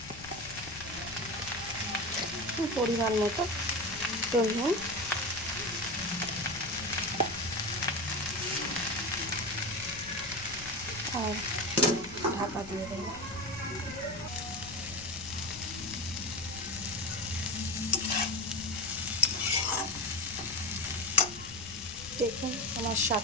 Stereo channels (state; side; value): noise; left; rumble, 16 dB below the sound